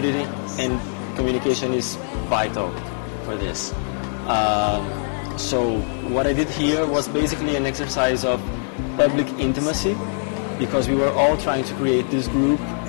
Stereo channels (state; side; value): silent; right; 64 dB below the other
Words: and communication is vital for this. So what I did here was basically an exercise of public intimacy, because we were all trying to create this group